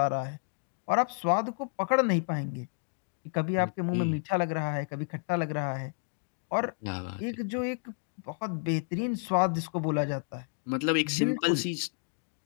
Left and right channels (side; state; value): right; silent; digital silence